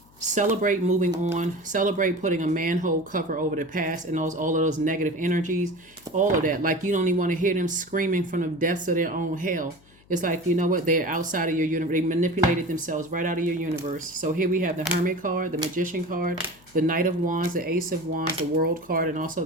celebrate moving on, celebrate putting a manhole cover over the past and all of those negative energies, all of that. Like, you don't even want to hear them screaming from the depths of their own hell. It's like, you know what, they're outside of your universe. They manipulated themselves right out of your universe. So here we have the Hermit card, the Magician card, the Knight of Wands, the Ace of Wands, the World card, and also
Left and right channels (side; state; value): left; noise; hum, 28 dB below the sound